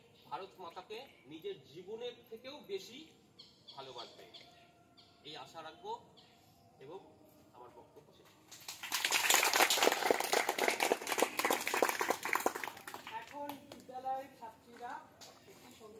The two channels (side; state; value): both; identical; correlation 1.00